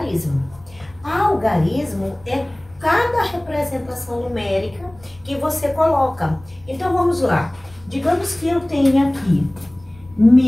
Algarismo é cada representação numérica que você coloca. Então, vamos lá. Digamos que eu tenha aqui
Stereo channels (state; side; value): noise; left; rumble, 25 dB below the sound